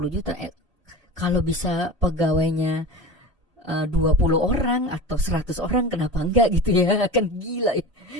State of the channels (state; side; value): normal; both; correlation 0.32